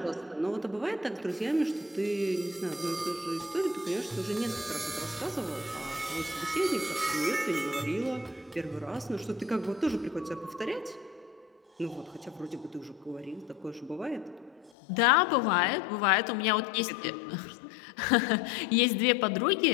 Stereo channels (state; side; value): drops out; right; at 14.7 s